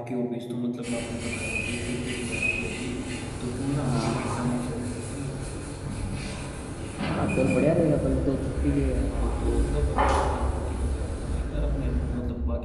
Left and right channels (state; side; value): identical; both; correlation 1.00